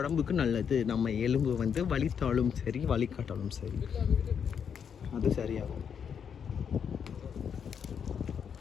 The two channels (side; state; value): right; quieter; 7.4 dB